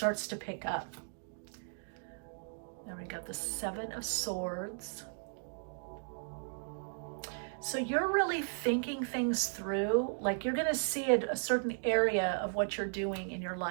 to pick up. Now we got the 7 of Swords. So you're really thinking things through, like you're going to see a certain area of what you're doing in your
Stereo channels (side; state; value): left; silent; digital silence